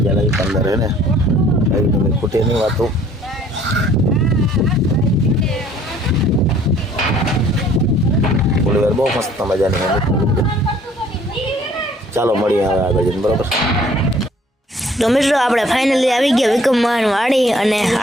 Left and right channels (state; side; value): normal; both; correlation 0.57